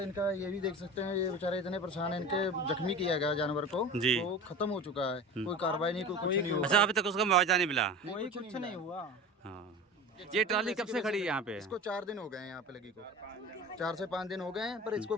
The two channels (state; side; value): normal; both; correlation 0.33